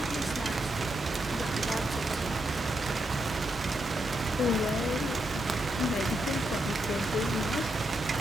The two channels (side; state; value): both; normal; correlation 0.82